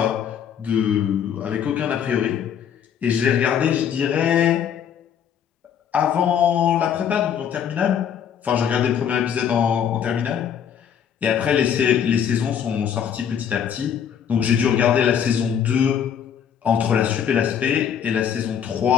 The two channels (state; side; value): quieter; right; 8.5 dB